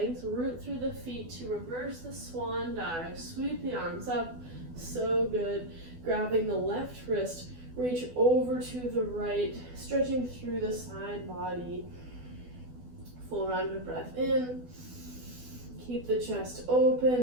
root through the feet to reverse the swan dive. Sweep the arms up. So good. Grabbing the left wrist, reach over to the right, stretching through the side body. Full round of breath in. Keep the chest open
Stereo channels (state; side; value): late; left; 12 ms